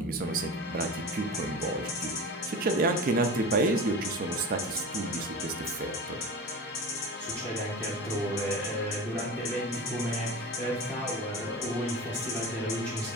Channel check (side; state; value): both; normal; correlation 0.31